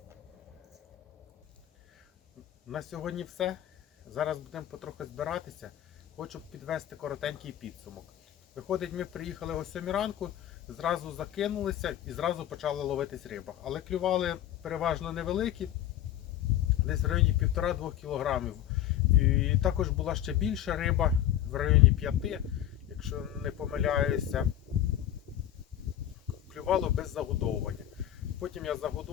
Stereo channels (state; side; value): quieter; right; 11.7 dB